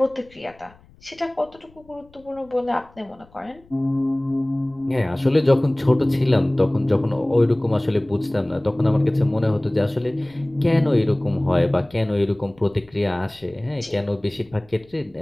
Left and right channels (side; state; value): left; noise; rumble, 28 dB below the sound